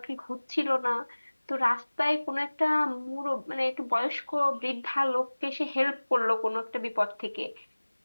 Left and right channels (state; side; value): inverted; both; correlation -1.00